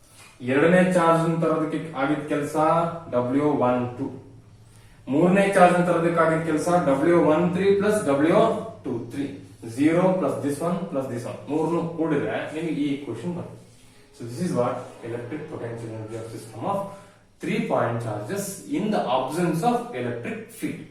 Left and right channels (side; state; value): both; identical; correlation 1.00